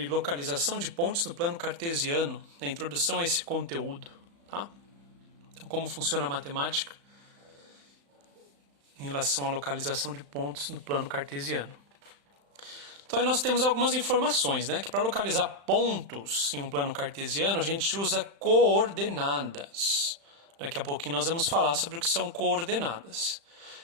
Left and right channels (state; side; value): late; left; 35 ms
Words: localização de pontos no plano cartesiano, na introdução a esse conteúdo, tá? Então, como funciona a matemática em relação à localização de pontos no plano cartesiano. Então, aí nós temos algumas informações, né? Que para localizar pontos em um plano cartesiano, a gente usa coordenadas. Daqui a pouquinho nós vamos falar sobre o que são coordenadas.